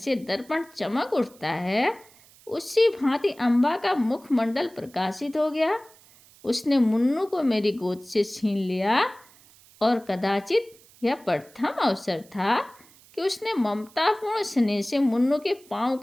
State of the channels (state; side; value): noise; right; hiss, 26 dB below the sound